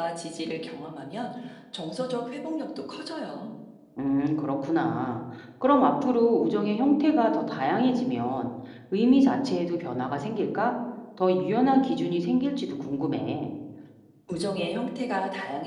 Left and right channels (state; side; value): identical; both; correlation 1.00